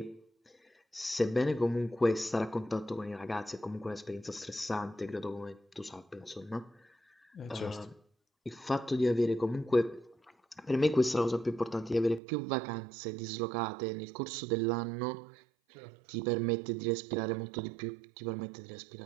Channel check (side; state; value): left; drops out; at 12.2 s